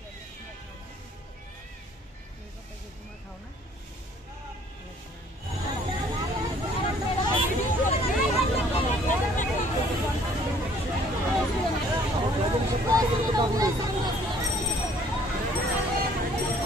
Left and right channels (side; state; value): both; normal; correlation 0.58